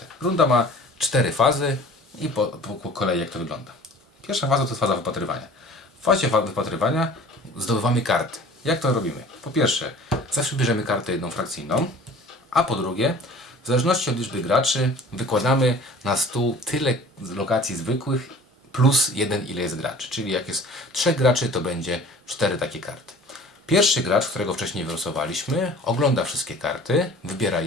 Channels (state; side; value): normal; both; correlation 0.46